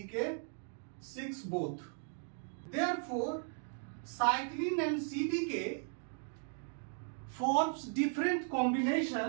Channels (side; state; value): left; silent; 53 dB below the other